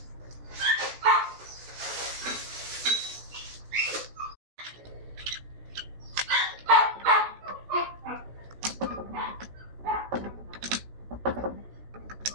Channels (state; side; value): late; left; 16 ms